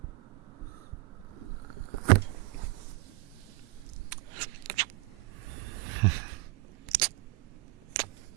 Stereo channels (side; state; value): left; quieter; 24.4 dB